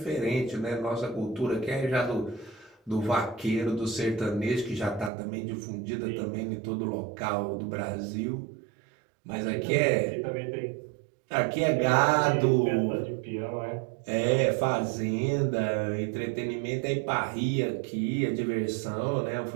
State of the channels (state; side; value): drops out; left; at 5.1 s